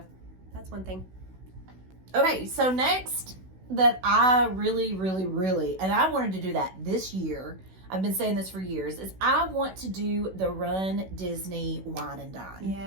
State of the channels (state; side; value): late; left; 16 ms